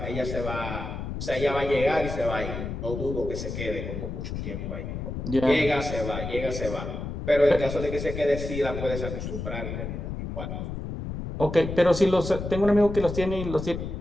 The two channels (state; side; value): noise; left; rumble, 6 dB below the sound